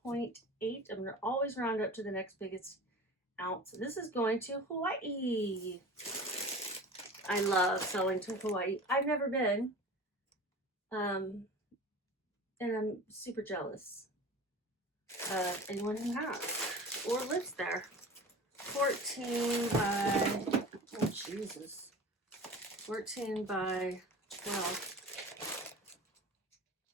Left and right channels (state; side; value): normal; both; correlation 0.37